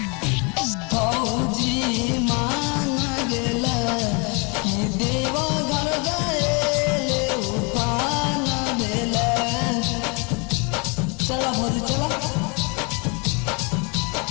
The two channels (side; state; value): right; quieter; 31.9 dB